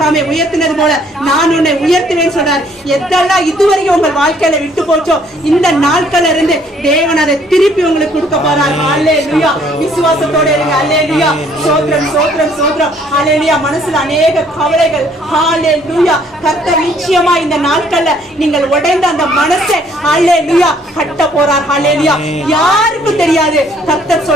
உயர்த்தினது போல நான் உன்னை உயர்த்துவேன்னு சொல்றார். எதெல்லாம் இதுவரைக்கும் உங்கள் வாழ்க்கையில விட்டு போச்சோ இந்த நாட்கள்ல இருந்து தேவன் அதை திருப்பி உங்களுக்கு கொடுக்க போறார். ஹல்லேலூயா. விசுவாசத்தோட இருங்க. ஹல்லேலூயா. சோத்ரம் சோத்ரம் சோத்ரம். ஹல்லேலூயா. மனசுல அநேக கவலைகள். ஹல்லேலூயா. கர்த்தர் நிச்சயமா இந்த நாட்கள்ல நீங்கள் உடைந்த அந்த மனசை ஹல்லேலூயா கட்ட போறார். ஹல்லேலூயா. யாருக்கும் தெரியாது. கர்த்தர்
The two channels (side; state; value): both; normal; correlation 0.62